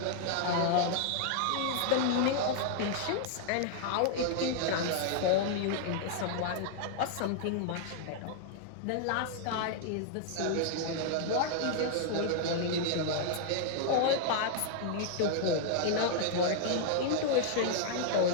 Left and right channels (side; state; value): both; different; correlation -0.01